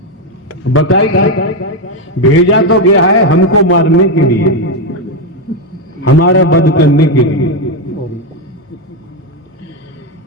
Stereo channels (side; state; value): both; normal; correlation 0.07